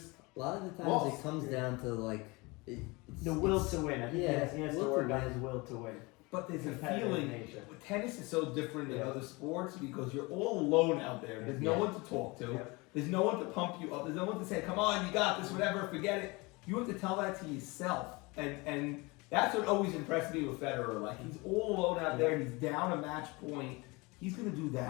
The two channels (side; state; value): right; quieter; 25.4 dB